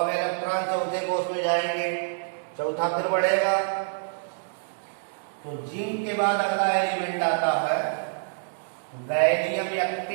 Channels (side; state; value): left; silent; digital silence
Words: इलेक्ट्रॉन चौथे कोष में जाएंगे, चौथा फिर बढ़ेगा। तो जिंक के बाद अगला एलिमेंट आता है गैलियम